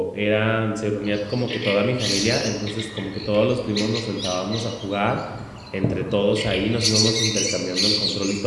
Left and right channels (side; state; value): both; identical; correlation 1.00